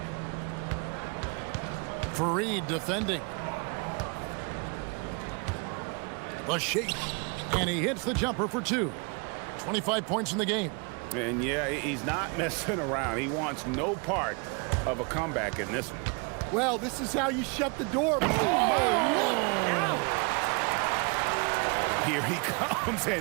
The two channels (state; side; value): quieter; left; 32.8 dB